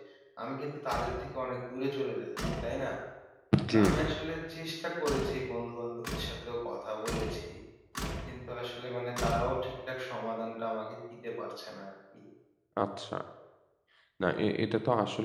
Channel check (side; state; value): both; identical; correlation 1.00